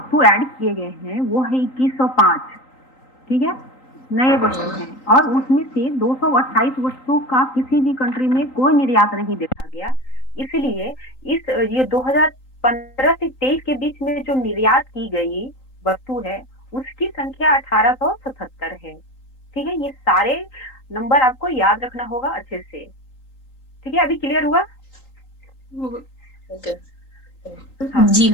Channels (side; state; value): right; late; 3.8 ms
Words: ऐड किए गए हैं वो है 2105, ठीक है, नए वस्तु हैं, और उसमें से 228 वस्तु का किसी भी कंट्री में कोई निर्यात नहीं देखा गया। इसलिए ये 2015 से 23 के बीच में जो निर्यात की गई वस्तु है उसकी संख्या 1877 है, ठीक है। ये सारे नंबर आपको याद रखना होगा अच्छे से, ठीक है। अभी क्लियर हुआ? ओके हाँ। जी